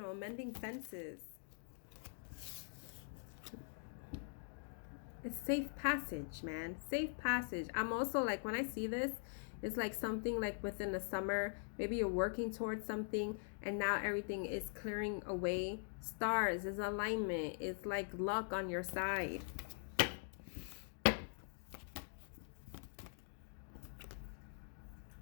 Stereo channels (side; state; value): right; silent; digital silence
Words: mending fences. It's safe passage, man. Safe passage. I'm also like, when I see this, it's like something like within the summer. Maybe you're working towards something and now everything is clearing away. Stars is alignment. It's like luck on your side.